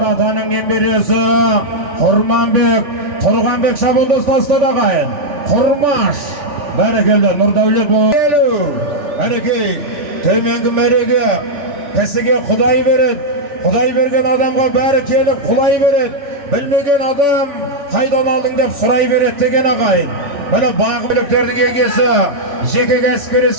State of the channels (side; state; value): left; late; 3.5 ms